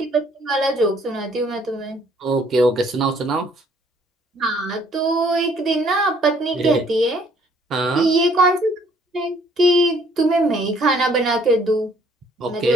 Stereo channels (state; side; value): normal; both; correlation 0.61